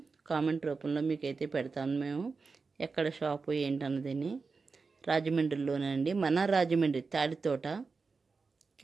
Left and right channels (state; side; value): quieter; left; 4.5 dB